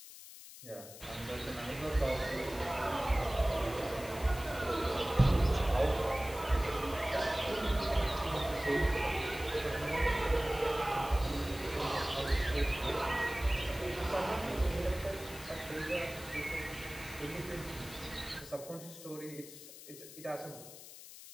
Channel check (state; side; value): noise; left; hiss, 15 dB below the sound